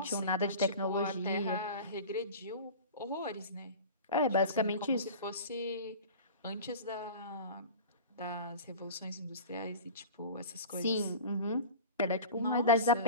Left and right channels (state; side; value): inverted; both; correlation -0.36